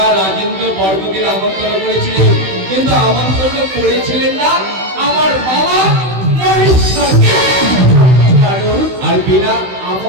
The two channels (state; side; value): late; left; 16 ms